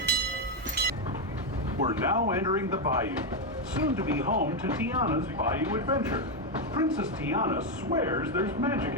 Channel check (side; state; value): both; normal; correlation 0.04